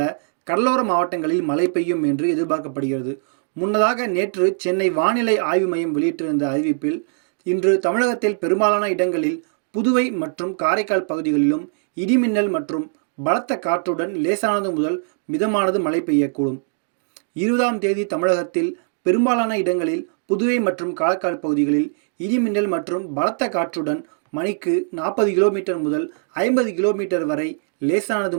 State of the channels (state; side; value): silent; left; digital silence